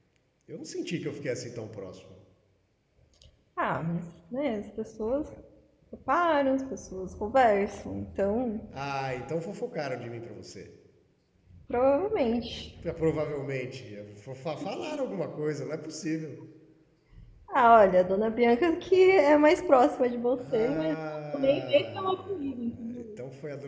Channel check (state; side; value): identical; both; correlation 1.00